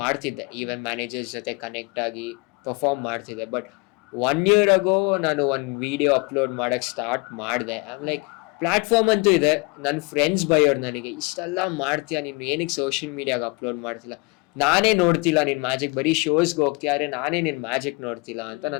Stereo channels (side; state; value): right; quieter; 28.0 dB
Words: ಮಾಡ್ತಿದ್ದೆ, ಈವೆಂಟ್ ಮ್ಯಾನೇಜರ್ಸ್ ಜೊತೆ ಕನೆಕ್ಟ್ ಆಗಿ ಪರ್ಫಾರ್ಮ್ ಮಾಡ್ತಿದ್ದೆ. ಬಟ್ 1 year ago ನಾನು ಒಂದು ವಿಡಿಯೋ ಅಪ್ಲೋಡ್ ಮಾಡಕ್ಕೆ ಸ್ಟಾರ್ಟ್ ಮಾಡಿದೆ. ಐಮ್ ಲೈಕ್, ಪ್ಲಾಟ್ಫಾರ್ಮ್ ಅಂತೂ ಇದೆ, ನನ್ನ ಫ್ರೆಂಡ್ಸ್ ಬೈಯೋರು ನನಗೆ, ಇಷ್ಟೆಲ್ಲ ಮಾಡ್ತೀಯಾ ನೀನು, ಏನಕ್ಕೆ ಸೋಷಿಯಲ್ ಮೀಡಿಯಾಗೆ ಅಪ್ಲೋಡ್ ಮಾಡ್ತಿಲ್ಲ, ನಾನೇ ನೋಡ್ತಿಲ್ಲ ನಿನ್ ಮ್ಯಾಜಿಕ್, ಬರೀ ಶೋಸ್ಗೆ ಹೋಗ್ತಿಯಾರೆ, ನಾನೇ ನಿನ್ ಮ್ಯಾಜಿಕ್ ನೋಡ್ತಿಲ್ಲ ಅಂತ